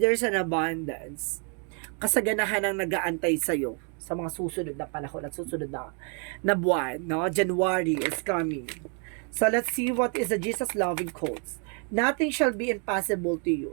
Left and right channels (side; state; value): left; quieter; 38.3 dB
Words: an abundance. Kasaganahan ang nag-aantay sa'yo sa mga susunod na panahon at susunod na buwan, no? January is coming. So, let's see what is the Jesus loving quotes. Nothing shall be impossible to you.